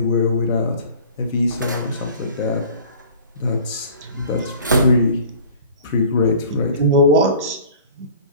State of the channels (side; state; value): both; inverted; correlation -0.45